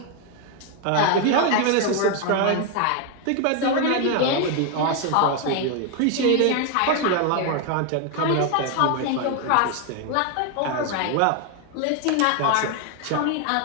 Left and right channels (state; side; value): different; both; correlation 0.01